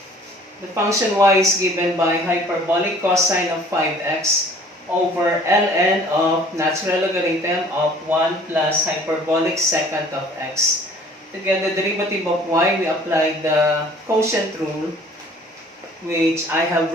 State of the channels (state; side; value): normal; both; correlation 0.52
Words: The function y is given by hyperbolic cosine of 5x over ln of natural logarithm of 1 plus hyperbolic secant of x. To get the derivative of y, we apply the quotient rule, which I have